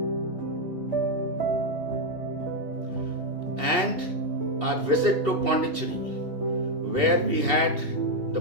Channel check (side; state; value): left; late; 2.7 ms